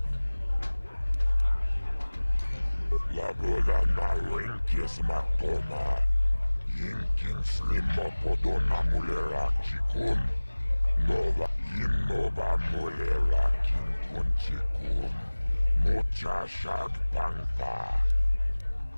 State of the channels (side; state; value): both; inverted; correlation -1.00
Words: Laboda na rinkis matoma. Yinkin slimo podona mulera chikun. Nova innova mulera kinkun chikun. Mocha shag pangpa.